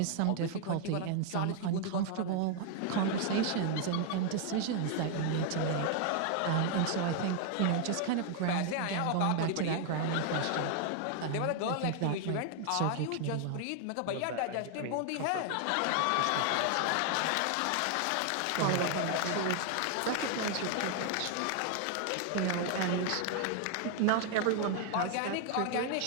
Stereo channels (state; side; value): different; both; correlation 0.00